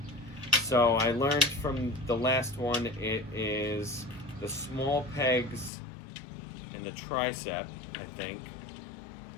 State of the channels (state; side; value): drops out; right; at 5.7 s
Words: So I learned from the last one, it is the small pegs in the tricep, I think.